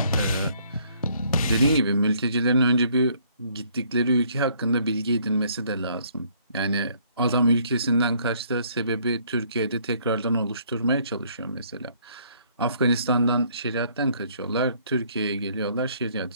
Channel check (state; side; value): inverted; both; correlation -0.64